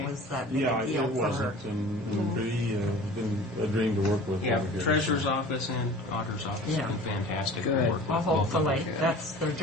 it was that big Yeah, a it deal for her. wasn't. And Bree has been a dream to work with. Yeah, over here. Treasurer's Office and Auditor's Office Yeah. have been fantastic Good. to work with. Well, both of them. hopefully, that's their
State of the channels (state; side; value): normal; both; correlation 0.42